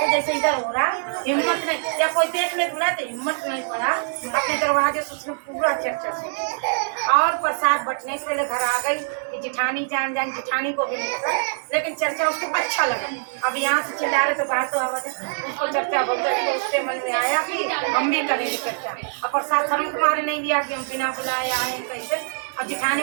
जैसे इधर हो रहा, हिम्मत नहीं, या कोई देख ले बुला तो हिम्मत नहीं पड़ा, अपने दरवाजे से उसने पूरा चर्चा सुनी और प्रसाद बटने से पहले घर आ गई कि जिठानी जान जिठानी को भी नहीं पता, लेकिन चर्चा उसको अच्छा लगा। अब यहाँ से चिल्ला रहे तो बाहर तो आवाज उसको चर्चा बोलते, तो उसके मन में आया कि हम भी करेंगे चर्चा, और प्रसाद शर्म तुम्हारे नहीं दिया कि हम बिना बुलाए आए कैसे। अब जिठानी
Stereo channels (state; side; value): silent; left; digital silence